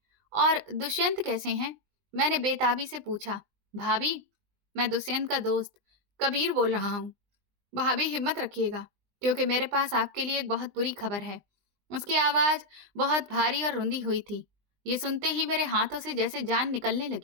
और दुष्यंत कैसे हैं? मैंने बेताबी से पूछा। भाभी, मैं दुष्यंत का दोस्त कबीर बोल रहा हूँ। भाभी, हिम्मत रखिएगा, क्योंकि मेरे पास आपके लिए एक बहुत बुरी खबर है। उसकी आवाज बहुत भारी और रुंधी हुई थी। ये सुनते ही मेरे हाथों से जैसे जान निकलने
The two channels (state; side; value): late; left; 20 ms